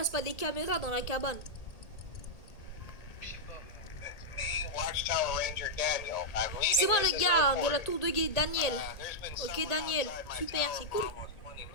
pas des caméras dans la cabane? Je sais pas. Me, Watchtower Ranger Daniel. I'm leaving C'est moi this le as gars de la reported. tour de guet, Daniel. There's been Ok, someone Daniel. outside my Super, tower c'est for cool. almost 20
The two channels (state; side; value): late; right; 1.8 ms